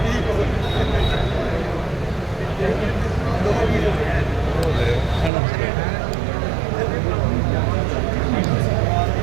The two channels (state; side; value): drops out; left; at 5.3 s